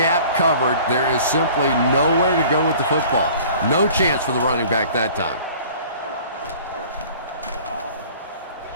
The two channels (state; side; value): inverted; both; correlation -0.48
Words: covered. There is simply nowhere to go with the football. No chance for the running back that time.